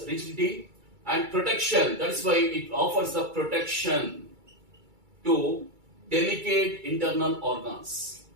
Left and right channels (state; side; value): late; left; 2.3 ms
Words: rigidity, and protection. That's why it offers the protection to delicate internal organs.